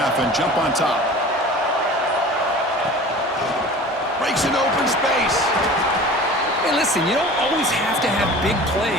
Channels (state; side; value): normal; both; correlation 0.40